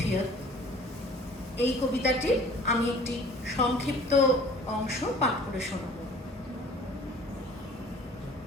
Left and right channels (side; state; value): both; normal; correlation 0.49